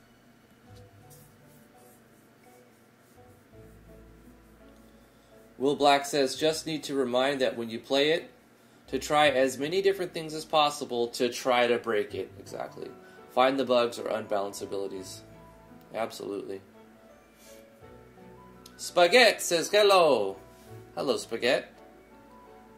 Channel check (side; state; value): both; identical; correlation 1.00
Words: Will Black says, just need to remind that when you play it, to try as many different things as possible to try to break it. Exactly. Find the bugs or unbalanced abilities. Absolutely. Spaghetti says hello. Hello, Spaghetti.